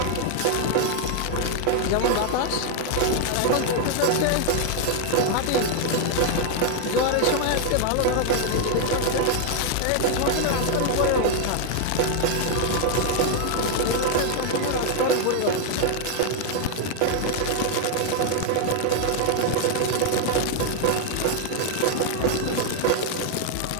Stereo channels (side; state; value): both; different; correlation 0.00